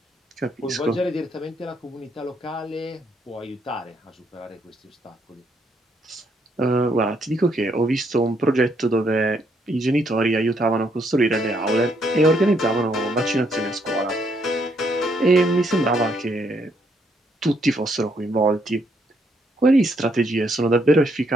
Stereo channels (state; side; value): normal; both; correlation 0.72